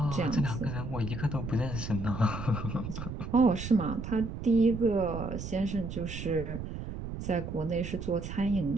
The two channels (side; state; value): right; noise; rumble, 7 dB below the sound